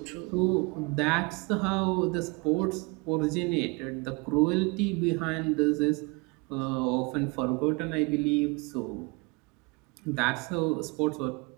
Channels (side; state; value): left; quieter; 27.9 dB